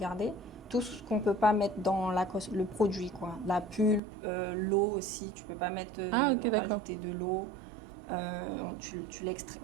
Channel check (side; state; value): left; drops out; at 4.0 s